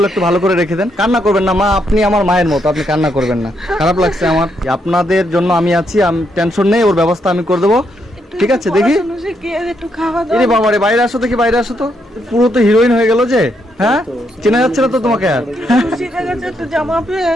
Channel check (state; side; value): normal; both; correlation 0.77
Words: একটু ভালো করে রেখে দেন। কান্না করবেন না মা, আপনি আমার মায়ের মতো, আপনি কান্না করবেন না। খারাপ লাগছে আমার, আপনাদের জন্য আমি আছি, আমি টেনশন নেই, ওর ব্যবস্থা আমি করে দেবো, ঠিক আছে? দেখি, পড়াশোনা শিখিয়ে একটু খাওয়া দাওয়া। এরে বাবা রে, বাইরে আসো দেখি, বাইরে আসো তো। পুরো তো হিরোইন হয়ে গেল যে, হ্যাঁ? চেনা যাচ্ছে না তো তোমাকে আর। খুশি দেখাচ্ছে একটু জামা পেয়ে।